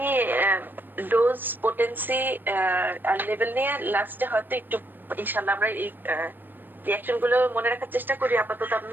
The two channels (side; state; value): left; late; 0.092 ms